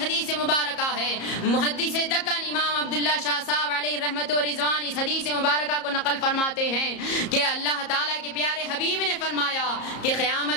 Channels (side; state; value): right; late; 34 ms